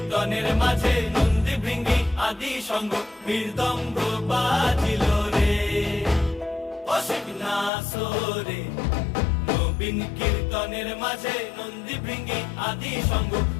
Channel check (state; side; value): drops out; right; at 7.7 s